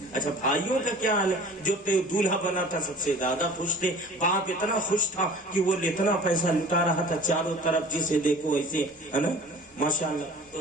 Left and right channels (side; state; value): both; normal; correlation 0.45